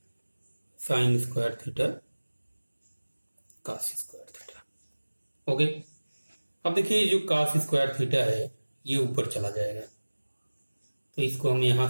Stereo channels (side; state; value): both; inverted; correlation -1.00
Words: sin² theta cos² theta. Okay, अब देखिए जो cos² थीटा है ये ऊपर चला जाएगा, तो इसको हम